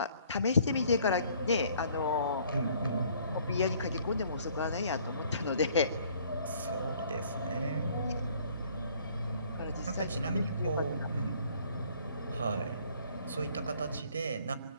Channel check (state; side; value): inverted; both; correlation -0.59